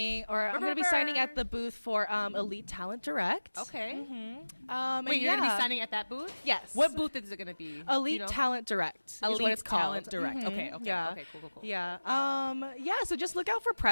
at the booth for Elite Talent Direct. Okay. Wait, you're going to be signing at that booth? Yes. What booth is it going to be? Elite Talent Direct. Elite is what it's Talent called. Direct. Okay. Yeah. Okay. Cool. Yeah. So just look out for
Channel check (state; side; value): inverted; both; correlation -1.00